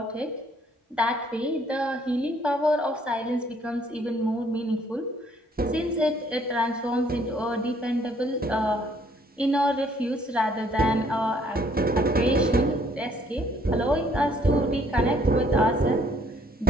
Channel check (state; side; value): normal; both; correlation 0.63